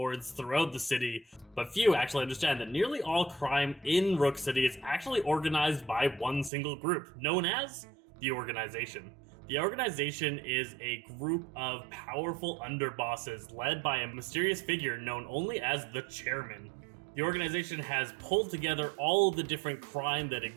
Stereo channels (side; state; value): left; drops out; at 6.5 s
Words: throughout the city, but few actually understand that nearly all crime in Rook City is actually organized by one single group, known as the Organization. The Organization is a group of powerful underbosses led by a mysterious figure known only as the Chairman. The organization has pulled together all of the different crime that